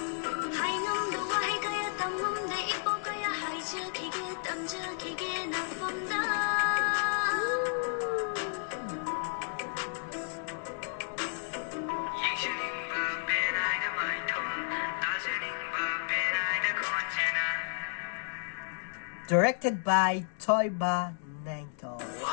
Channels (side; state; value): right; silent; digital silence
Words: Directed by Toyba Nangto.